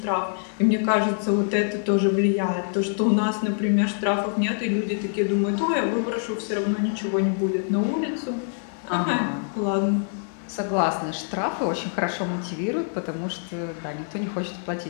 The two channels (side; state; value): right; silent; digital silence